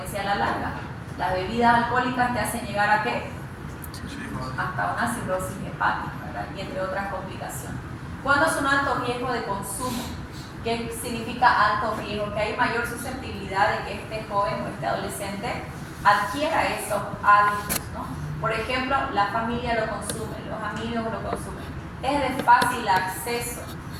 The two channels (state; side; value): identical; both; correlation 1.00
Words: a la larga. Las bebidas alcohólicas te hacen llegar a ¿qué? Hasta una cirrosis hepática, ¿verdad? Y entre otras complicaciones. ¿Cuándo es un alto riesgo de consumo? ¿Qué significa alto riesgo? Que hay mayor susceptibilidad de que este joven o este adolescente adquiera esos hábitos, ¿no? Por ejemplo, la familia lo consume, los amigos lo consumen. Es de fácil acceso